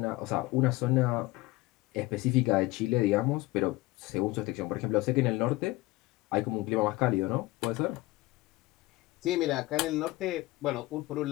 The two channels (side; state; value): right; quieter; 20.2 dB